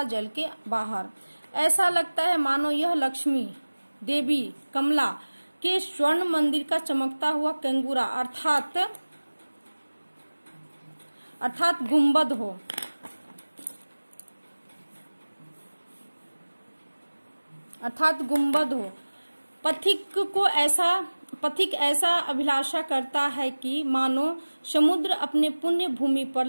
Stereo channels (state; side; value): inverted; both; correlation -1.00